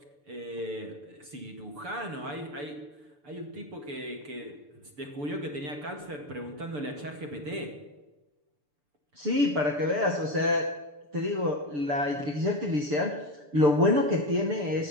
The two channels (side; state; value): left; late; 6.8 ms